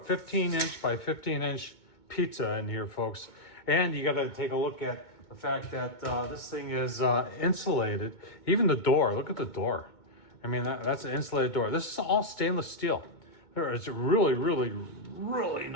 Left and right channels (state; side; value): late; right; 2.2 ms